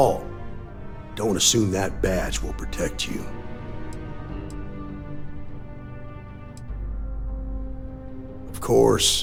don't assume that badge will protect you. Of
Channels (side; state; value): both; identical; correlation 1.00